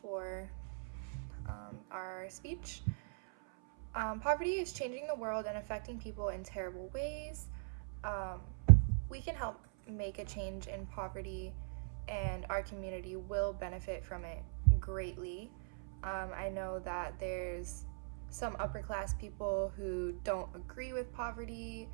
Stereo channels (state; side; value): silent; left; 51 dB below the other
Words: our speech. Poverty is changing the world and affecting people in terrible ways. We can help make a change in poverty, and our community will benefit from it greatly. I know that there's some upper class people who don't agree with poverty.